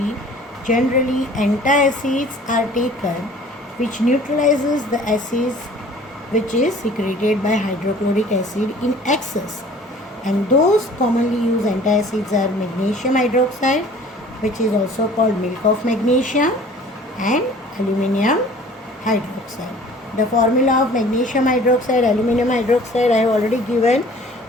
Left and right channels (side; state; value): both; normal; correlation 0.49